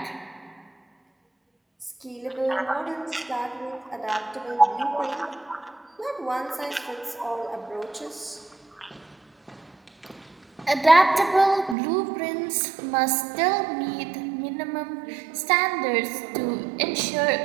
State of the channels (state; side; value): drops out; left; at 11.8 s